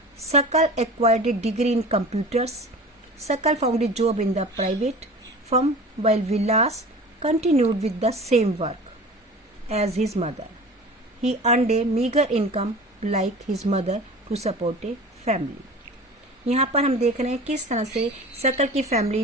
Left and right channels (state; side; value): normal; both; correlation 0.38